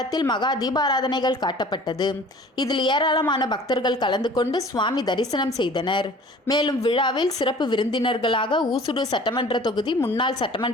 மகா தீபாராதனைகள் காட்டப்பட்டது. இதில் ஏராளமான பக்தர்கள் கலந்து கொண்டு சுவாமி தரிசனம் செய்தனர். மேலும் விழாவில் சிறப்பு விருந்தினர்களாக ஊசுடு சட்டமன்ற தொகுதி முன்னாள்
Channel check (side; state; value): both; normal; correlation 0.47